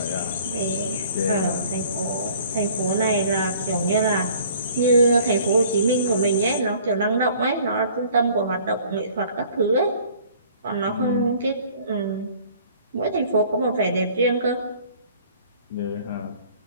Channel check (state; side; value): inverted; both; correlation -0.53